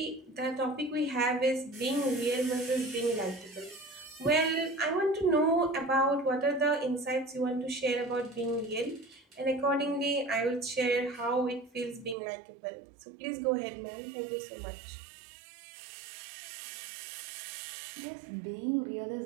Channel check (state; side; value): drops out; left; at 12.2 s